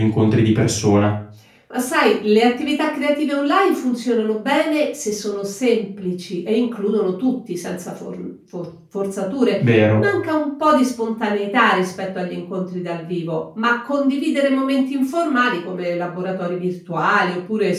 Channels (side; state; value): both; identical; correlation 1.00